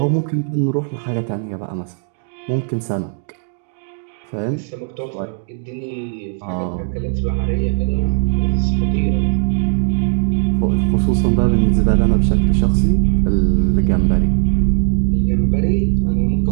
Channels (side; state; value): left; silent; digital silence